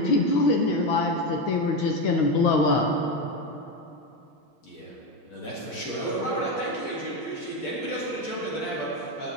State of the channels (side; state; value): right; late; 6.3 ms